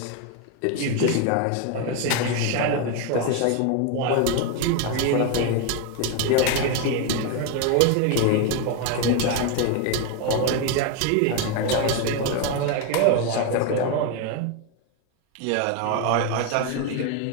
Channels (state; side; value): different; both; correlation 0.02